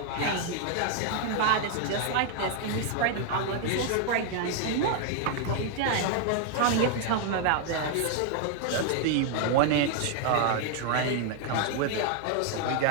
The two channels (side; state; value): both; different; correlation 0.00